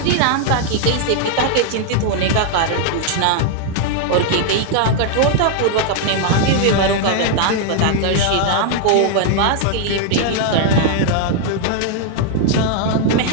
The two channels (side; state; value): both; different; correlation 0.00